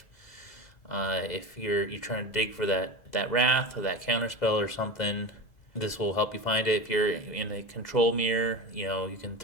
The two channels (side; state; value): right; late; 2.0 ms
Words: If you're trying to dig for that wrath or that counter spell or something, this will help you find it. If you're in a control mirror, you can